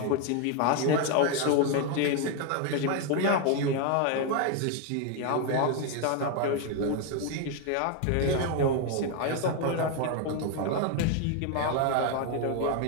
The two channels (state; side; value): different; both; correlation 0.01